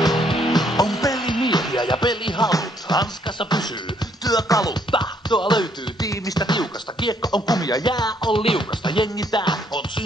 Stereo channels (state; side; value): normal; both; correlation 0.68